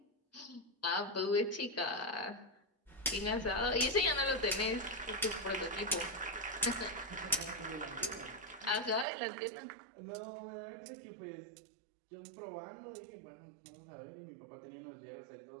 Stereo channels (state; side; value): drops out; left; at 9.1 s